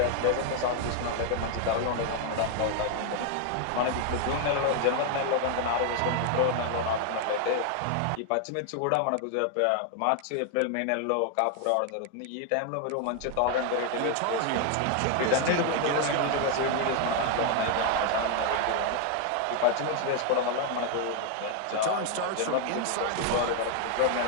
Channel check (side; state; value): both; different; correlation 0.00